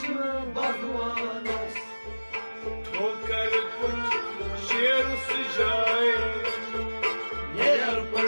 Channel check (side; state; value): both; inverted; correlation -1.00